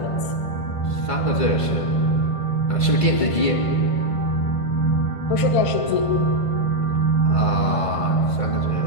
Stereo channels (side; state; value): right; late; 1.5 ms